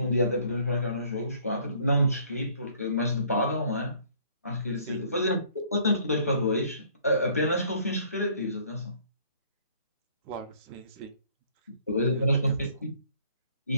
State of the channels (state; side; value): inverted; both; correlation -0.59